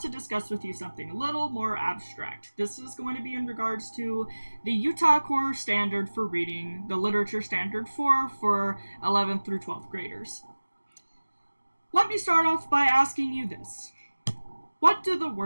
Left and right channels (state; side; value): inverted; both; correlation -1.00